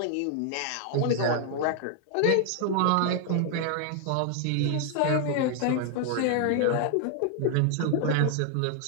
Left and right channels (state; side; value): different; both; correlation 0.00